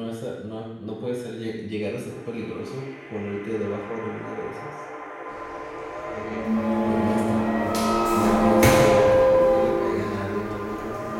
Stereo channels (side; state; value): both; identical; correlation 1.00